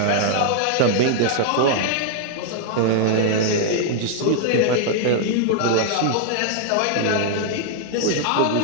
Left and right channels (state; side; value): different; both; correlation 0.00